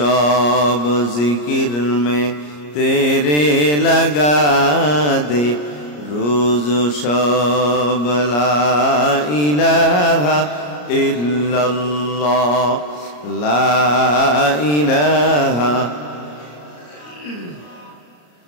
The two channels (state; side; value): late; right; 34 ms